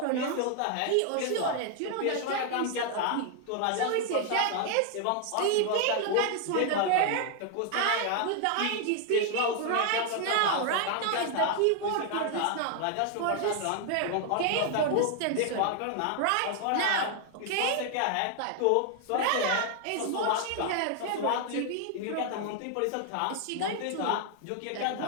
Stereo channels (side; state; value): both; different; correlation 0.00